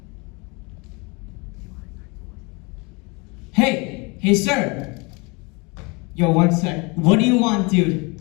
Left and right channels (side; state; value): right; quieter; 28.6 dB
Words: Hey, sir. Yo, one sec. What do you want, dude?